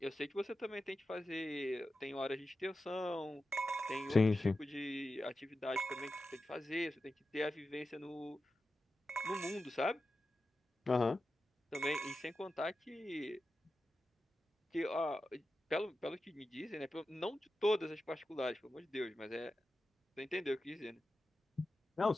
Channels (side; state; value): both; normal; correlation 0.92